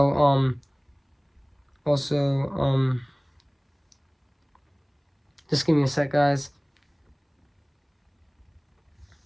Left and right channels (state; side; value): identical; both; correlation 1.00